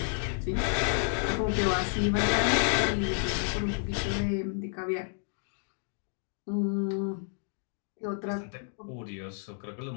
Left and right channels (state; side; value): silent; right; 57 dB below the other